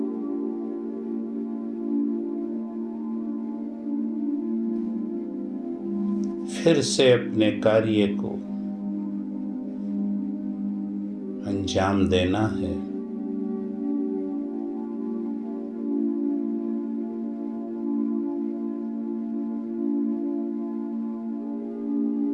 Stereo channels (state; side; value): identical; both; correlation 1.00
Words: फिर से अपने कार्य को अंजाम देना है।